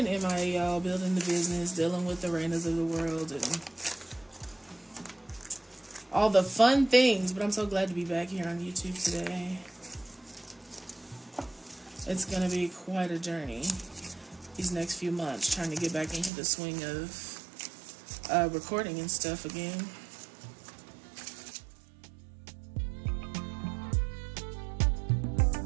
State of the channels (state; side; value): drops out; left; at 16.3 s